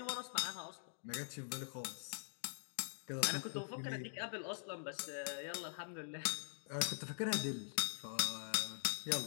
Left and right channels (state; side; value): silent; right; digital silence